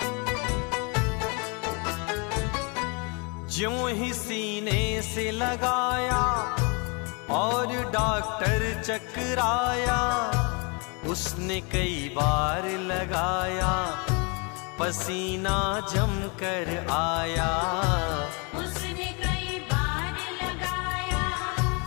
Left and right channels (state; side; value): quieter; right; 32.8 dB